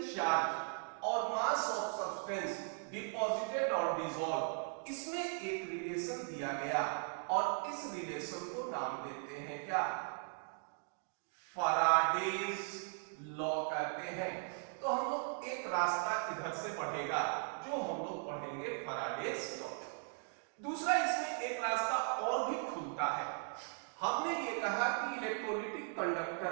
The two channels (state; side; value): silent; left; 52 dB below the other